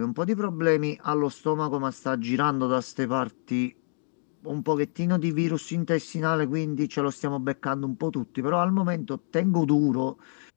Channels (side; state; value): right; silent; digital silence